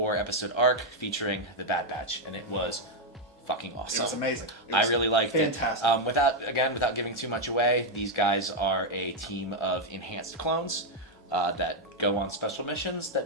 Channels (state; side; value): normal; both; correlation 0.02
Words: arc featuring The Bad Batch, and it was fucking awesome. It was amazing. I really liked fantastic. it. Without giving too much away, these guys are a team of enhanced clones that go on special missions